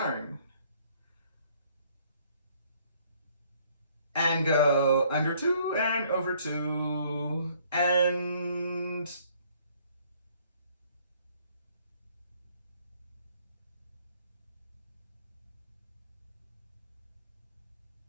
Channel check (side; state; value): both; inverted; correlation -0.61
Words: And go under 2 and over 2 and